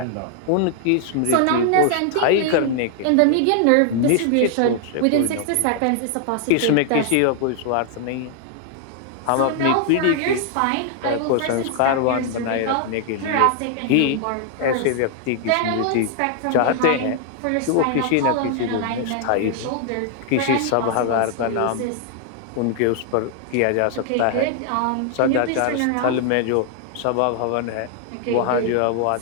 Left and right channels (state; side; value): different; both; correlation 0.00